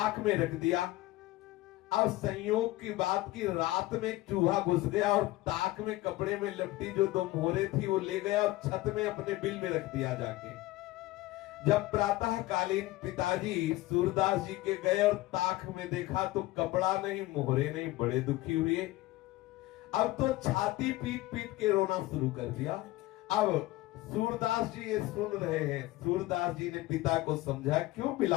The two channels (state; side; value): quieter; right; 18.1 dB